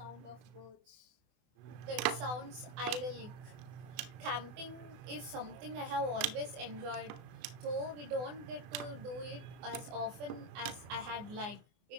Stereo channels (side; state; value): left; late; 24 ms